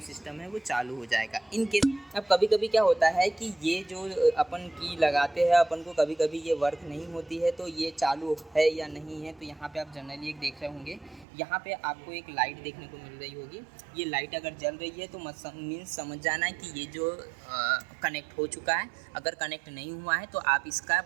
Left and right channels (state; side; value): drops out; left; at 11.2 s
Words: सिस्टम है वो चालू हो जाएगा। इन केस अब कभी कभी क्या होता है कि ये जो अपन की लगाते हैं अपन को कभी कभी ये वर्क नहीं होती है, तो ये चालू है या नहीं है। तो यहाँ पे आप जनरली एक देख रहे होंगे, यहाँ पे आपको एक लाइट देखने को मिल रही होगी। ये लाइट अगर जल रही है तो मीन्स समझ जाना है कि ये जो कनेक्ट हो चुका है। अगर कनेक्ट नहीं हुआ है तो आप इसका